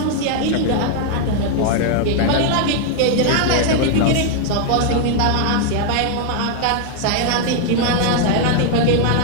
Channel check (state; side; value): different; both; correlation 0.00